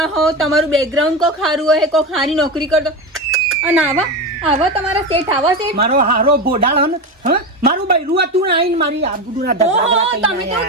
હો, તમારું બેકગ્રાઉન્ડ કોઈ ખારું હોય, કોઈ ખારી નોકરી કરતો. અને આવા તમારા શેઠ આવા શેઠ. મારો હારો બોડાળ હન, હ મારું બૈરું હતું ને આઈને મારી આબરૂના ધગડા તમે તો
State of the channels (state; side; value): normal; both; correlation 0.19